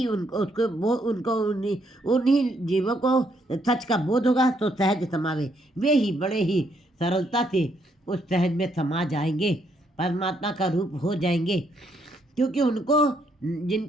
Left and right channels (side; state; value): both; normal; correlation 0.73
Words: उन्हीं जीवों को सच का बोध होगा तो सहज समावे। वे ही बड़े ही सरलता से उस सहज में समा जाएंगे, परमात्मा का रूप हो जाएंगे, क्योंकि उनको